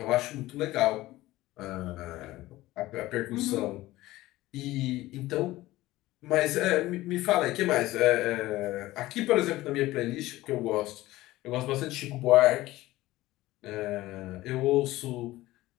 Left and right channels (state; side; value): quieter; right; 17.3 dB